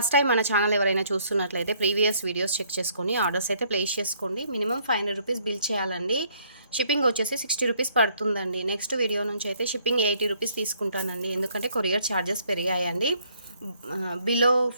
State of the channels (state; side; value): inverted; both; correlation -0.65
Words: టైం మన ఛానల్ ఎవరైనా చూస్తున్నట్లయితే ప్రీవియస్ వీడియోస్ చెక్ చేసుకొని ఆర్డర్స్ అయితే ప్లేస్ చేసుకోండి. మినిమం 500 రూపీస్ బిల్ చేయాలండి. షిప్పింగ్ వచ్చేసి 60 రూపీస్ పడుతుందండి. నెక్స్ట్ వీడియో నుంచి అయితే షిప్పింగ్ 80 రూపీస్ తీసుకుంటానండి, ఎందుకంటే కొరియర్ ఛార్జెస్ పెరిగాయండి. బిలో